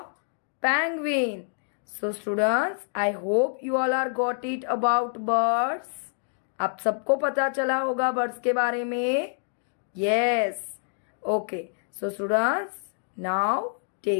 penguin. So students, I hope you all are got it about birds. आप सबको पता चला होगा birds के बारे में? Yes. Okay. So students, now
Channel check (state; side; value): silent; right; digital silence